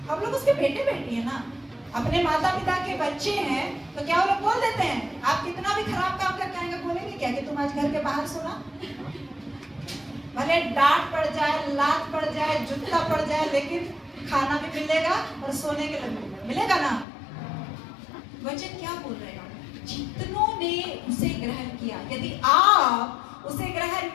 हम लोग उसके बेटे बेटी है ना, अपने माता पिता के बच्चे हैं, तो क्या वो लोग बोल देते हैं? आप कितना भी खराब काम करके आएंगे बोलेंगे क्या कि तुम आज घर के बाहर सोना? भले डांट पड़ जाए, लात पड़ जाए, जूता पड़ जाए, लेकिन खाना भी मिलेगा और सोने के लिए मिलेगा ना। वचन क्या बोल रहे हैं? जितनों ने उसे ग्रहण किया। यदि आप उसे ग्रहण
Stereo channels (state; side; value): drops out; right; at 17.1 s